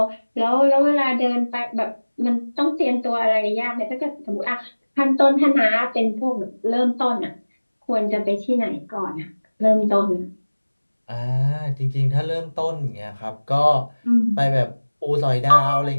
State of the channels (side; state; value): both; inverted; correlation -1.00